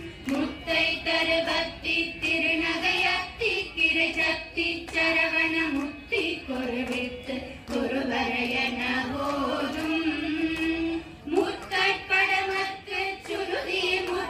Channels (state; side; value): identical; both; correlation 1.00